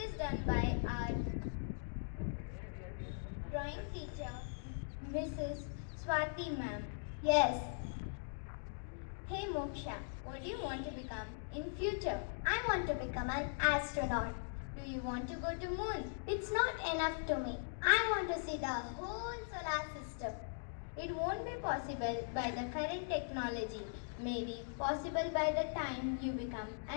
done by our drawing teacher, Mrs. Swati ma'am. Yes. Hey Moksha, what do you want to become in future? I want to become an astronaut. Do you want to go to moon? It's not enough to me. I want to see the whole solar system. It won't be possible by the current technology. Maybe possible by the time you become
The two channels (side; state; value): right; silent; digital silence